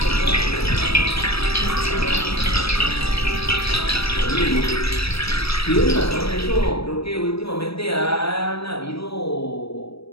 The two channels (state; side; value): late; right; 0.77 ms